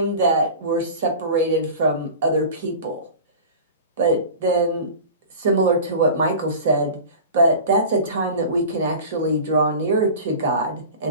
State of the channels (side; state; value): both; inverted; correlation -0.36